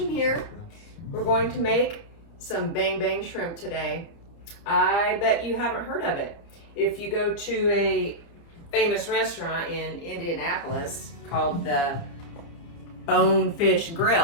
here. We're going to make some bang bang shrimp today. I bet you haven't heard of it. If you go to a famous restaurant in Indianapolis called the Bonefish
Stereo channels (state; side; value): late; right; 30 ms